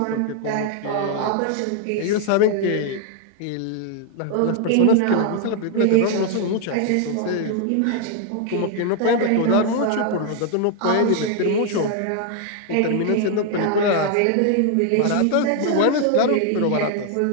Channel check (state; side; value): different; both; correlation 0.00